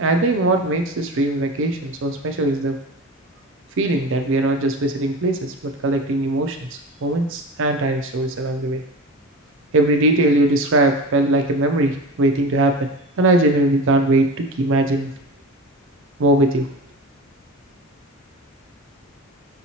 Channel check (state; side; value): normal; both; correlation 0.31